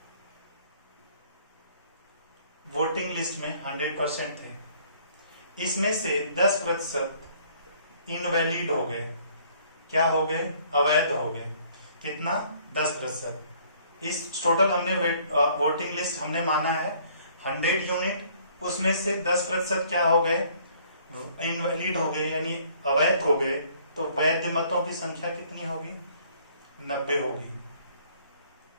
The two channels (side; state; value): both; inverted; correlation -0.60